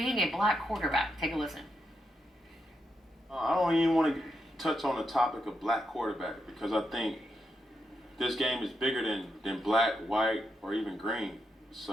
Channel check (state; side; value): normal; both; correlation 0.83